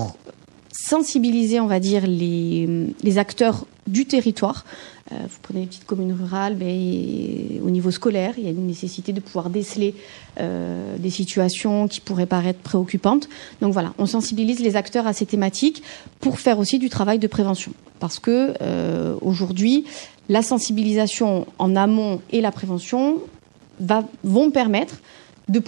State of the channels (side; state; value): left; quieter; 36.2 dB